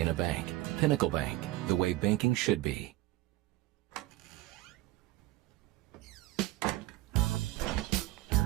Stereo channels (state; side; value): quieter; left; 17.1 dB